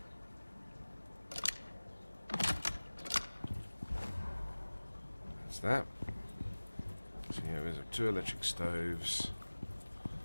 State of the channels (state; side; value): inverted; both; correlation -1.00